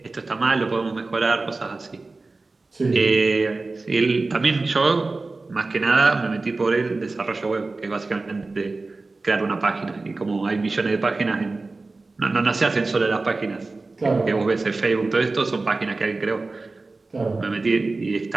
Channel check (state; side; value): quieter; left; 3.5 dB